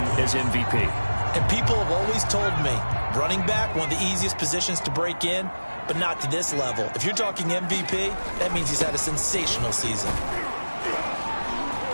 as MVP. And people have always told me, running back, one of the easiest positions to break in, but not to this level. If you're talking MVP, that means he's had a sensational season.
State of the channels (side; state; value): both; inverted; correlation -1.00